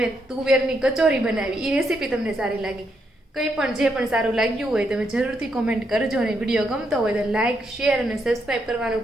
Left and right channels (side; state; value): both; normal; correlation 0.78